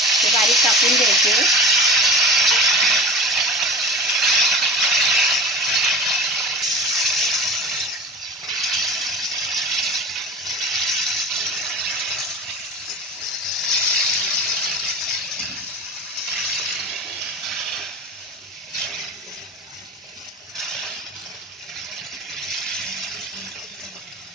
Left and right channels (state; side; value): normal; both; correlation 0.35